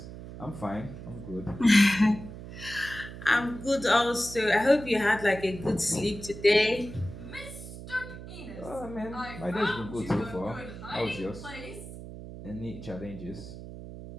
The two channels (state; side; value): noise; right; hum, 12 dB below the sound